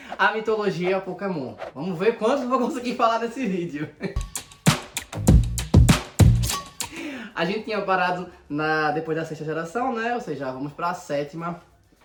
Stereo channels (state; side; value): identical; both; correlation 1.00